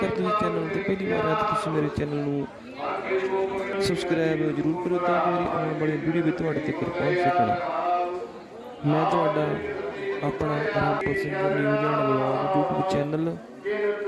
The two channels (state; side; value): identical; both; correlation 1.00